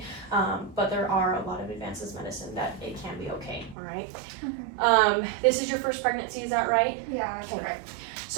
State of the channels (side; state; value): left; drops out; at 3.8 s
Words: But there are a lot of advances in medicine that it can be okay, all right? Okay. This is your first pregnancy, is that right? Yeah, that's Okay. right.